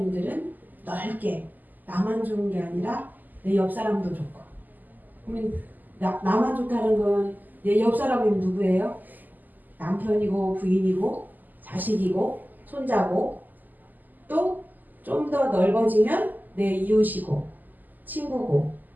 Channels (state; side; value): late; left; 0.085 ms